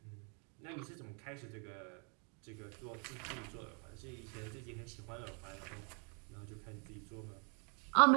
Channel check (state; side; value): quieter; left; 37.5 dB